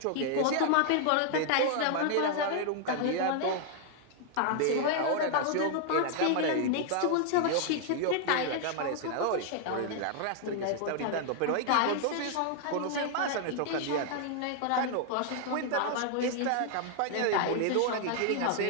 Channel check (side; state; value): both; different; correlation 0.00